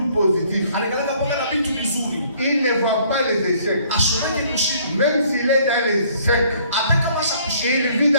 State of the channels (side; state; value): both; inverted; correlation -0.60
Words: positif. Il ne voit pas les échecs. Même s'il est dans les échecs, il vit